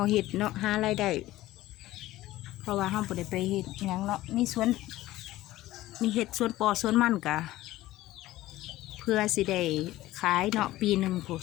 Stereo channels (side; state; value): right; quieter; 16.1 dB